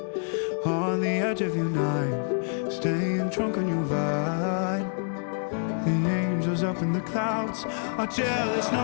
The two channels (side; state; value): right; silent; digital silence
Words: on the edge of your knife, staying drunk on your vine. The angels up in the clouds are jealous